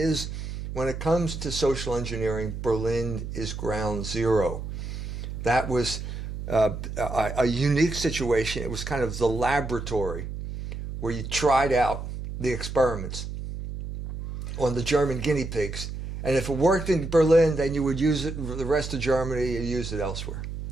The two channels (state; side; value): noise; right; hum, 7 dB below the sound